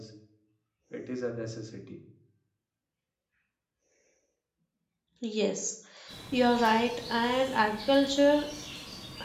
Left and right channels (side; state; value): both; identical; correlation 1.00